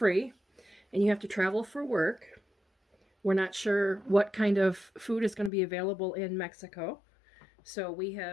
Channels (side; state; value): right; drops out; at 5.5 s